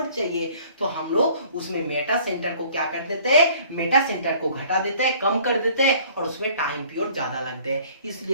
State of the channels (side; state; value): both; inverted; correlation -0.54